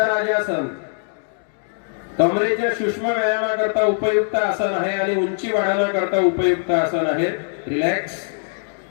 कमरेच्या सूक्ष्म व्यायामाकरता उपयुक्त आसन आहे आणि उंची वाढवण्याकरता उपयुक्त आसन आहे. रिलॅक्स.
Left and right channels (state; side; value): silent; right; 65 dB below the other